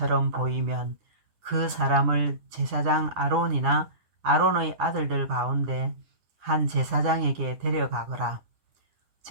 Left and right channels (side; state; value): left; late; 10 ms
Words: 보이면 그 사람을 제사장 아론이나 아론의 아들들 가운데 한 제사장에게 데려가거라.